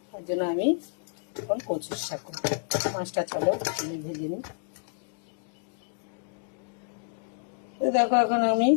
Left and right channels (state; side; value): silent; right; digital silence